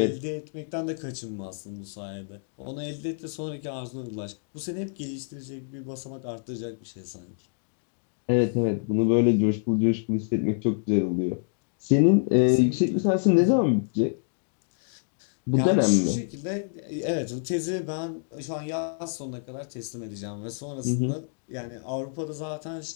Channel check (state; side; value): silent; right; digital silence